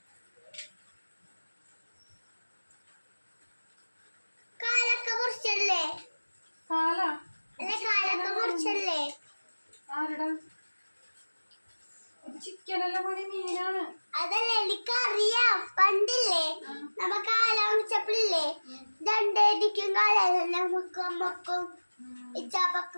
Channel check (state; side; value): inverted; both; correlation -1.00